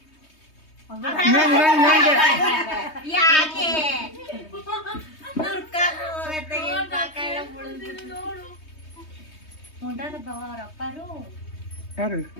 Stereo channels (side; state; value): right; late; 3.2 ms